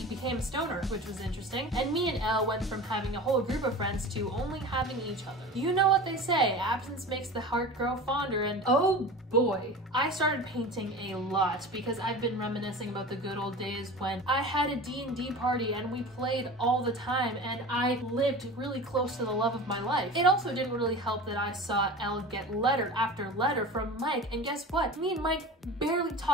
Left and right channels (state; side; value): normal; both; correlation 0.34